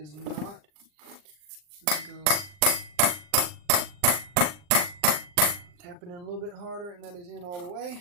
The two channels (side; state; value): left; late; 39 ms